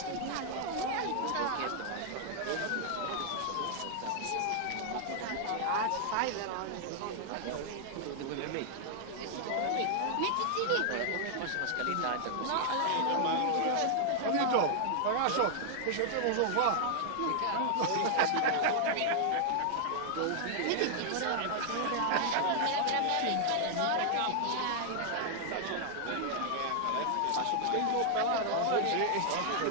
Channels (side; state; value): both; different; correlation 0.00